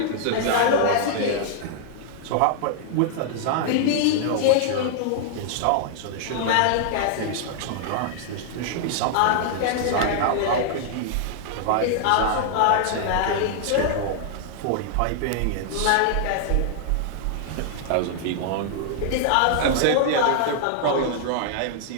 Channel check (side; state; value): both; different; correlation -0.01